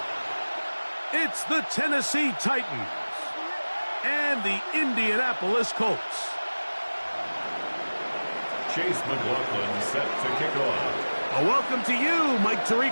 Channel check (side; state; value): both; inverted; correlation -1.00